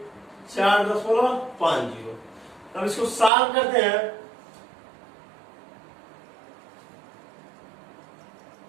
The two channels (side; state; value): left; drops out; at 3.3 s